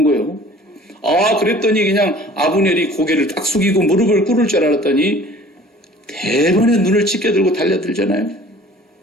거예요. 그랬더니 그냥 아브넬이 고개를 딱 숙이고 무릎을 꿇을 줄 알았더니 대번에 눈을 찢겨들고 달려들잖아요.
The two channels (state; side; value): normal; both; correlation 0.49